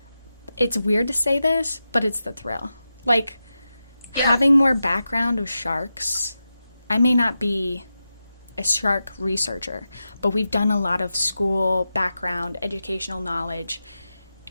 It's weird to say this, but it's the thrill. Like, having more background of sharks, I may not be a shark researcher, but we've done a lot of school background, educational knowledge,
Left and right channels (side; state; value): both; inverted; correlation -0.90